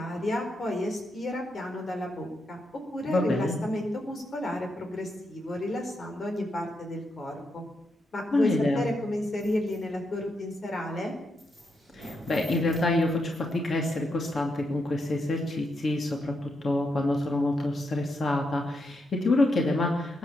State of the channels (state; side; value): normal; both; correlation 0.82